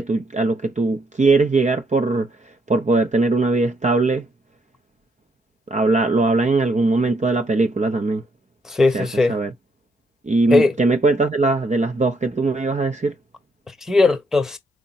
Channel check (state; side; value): normal; both; correlation 0.74